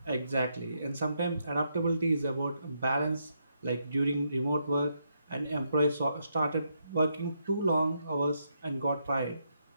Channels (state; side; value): inverted; both; correlation -0.79